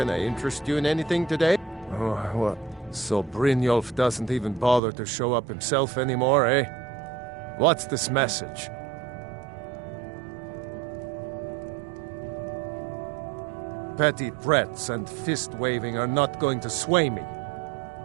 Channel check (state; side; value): drops out; left; at 4.8 s